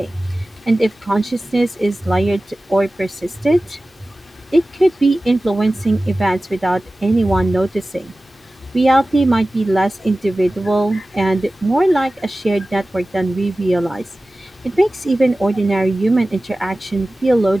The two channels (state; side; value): normal; both; correlation 0.96